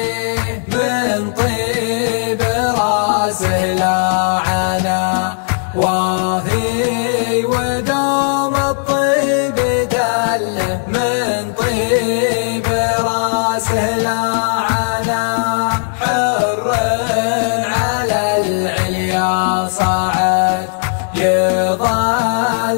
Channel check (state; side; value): silent; right; digital silence